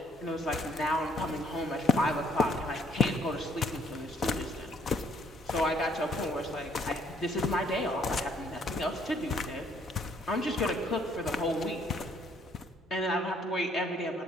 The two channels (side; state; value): both; normal; correlation 0.65